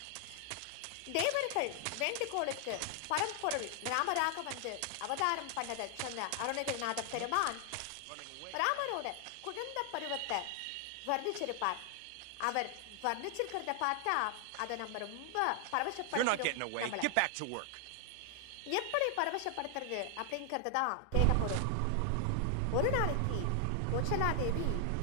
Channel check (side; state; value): both; different; correlation 0.00